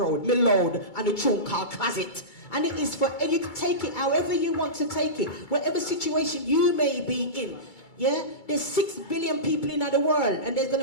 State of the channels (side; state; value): right; late; 2.3 ms